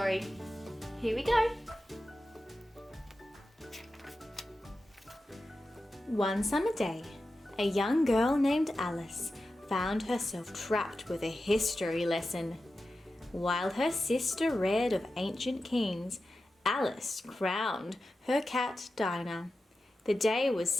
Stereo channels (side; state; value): both; normal; correlation 0.92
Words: Here we go. One summer day, a young girl named Alice found herself trapped with a history lesson. While her sister read of ancient kings, Alice crowned her cat Dinah. The day was